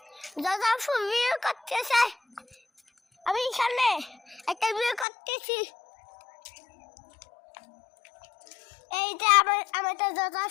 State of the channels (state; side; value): drops out; right; at 5.1 s